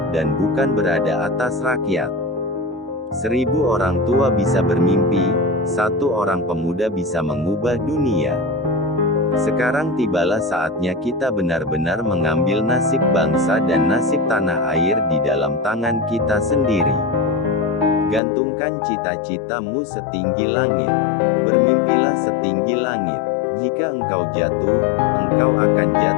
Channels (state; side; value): drops out; right; at 18.2 s